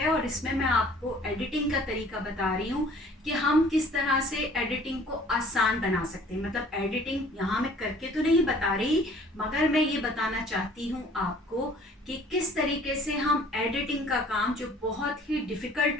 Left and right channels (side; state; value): both; normal; correlation 0.53